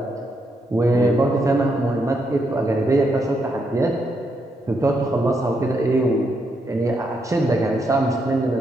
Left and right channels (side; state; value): both; normal; correlation 0.79